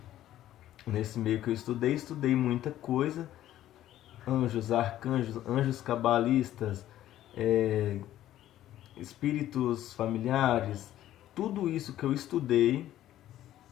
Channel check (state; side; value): quieter; right; 13.0 dB